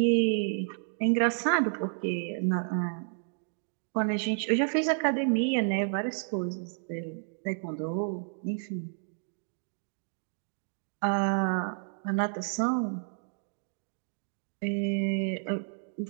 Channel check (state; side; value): silent; left; digital silence